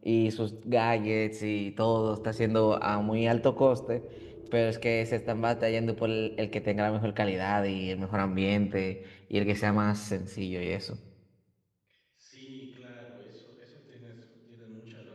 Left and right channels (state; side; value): identical; both; correlation 1.00